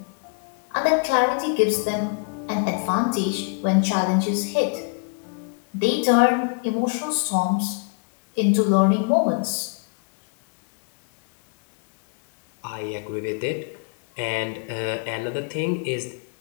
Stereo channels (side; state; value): right; quieter; 35.3 dB